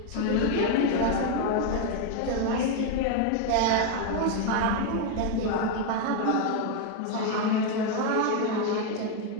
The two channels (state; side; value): different; both; correlation 0.01